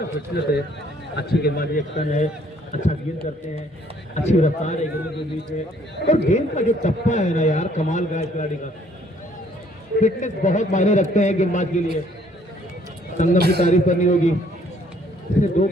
फिटनेस है, अच्छी गेंदबाजी एक्शन है, अच्छा गेंद करते हैं, अच्छी रफ्तार है गेंदों के बीच में। और गेंद का जो टप्पा है ना यार, कमाल का है खिलाड़ी का। फिटनेस बहुत मायने रखते हैं गेंदबाज के लिए। संगम की तारीफ करनी होगी, इसने 2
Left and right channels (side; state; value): both; normal; correlation 0.63